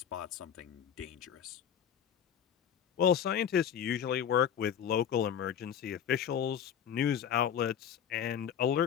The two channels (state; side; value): quieter; right; 8.8 dB